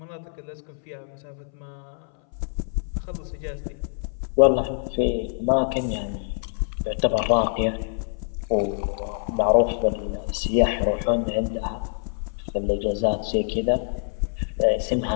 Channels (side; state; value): right; silent; 59 dB below the other